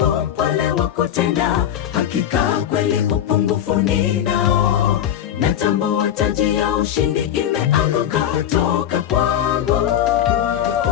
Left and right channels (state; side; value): quieter; right; 10.4 dB